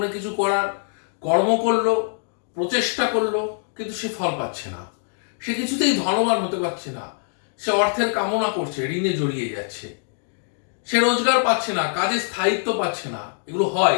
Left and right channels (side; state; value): right; silent; digital silence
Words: কিছু করার, কর্ম করলো, প্রচেষ্টা করলো, কিন্তু সে ফল পাচ্ছে না। সে কিছুতেই ধনবান হতে পারছে না। সে অর্থের কামনা করছে, ঋণে জড়িয়ে যাচ্ছে। সে রোজগার পাচ্ছে না, কাজে স্থায়িত্ব পাচ্ছে না। এগুলো হয়